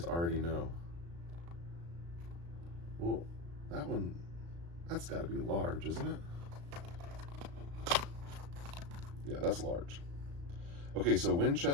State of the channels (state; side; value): late; left; 35 ms